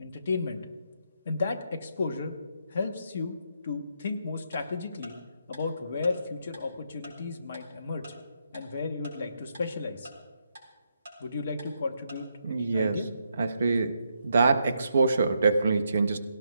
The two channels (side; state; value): both; inverted; correlation -0.79